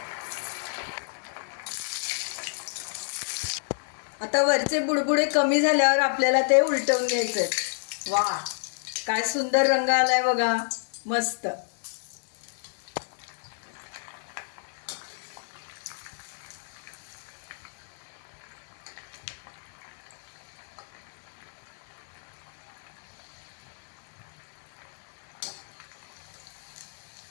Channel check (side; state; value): right; silent; digital silence